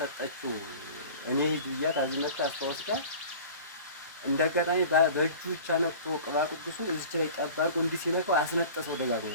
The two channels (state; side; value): inverted; both; correlation -0.41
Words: እኔ ሂጅ ብያት አዚ መጣ አስተዋስካ እንዳጋጣሚ በእጁ ብቻ ነክቶ ቅባ ቅዱሱን እዚች ላይ ጠብ አድርጎ እንዲህ ሲነካው አስነጠሰው ደጋግሞ።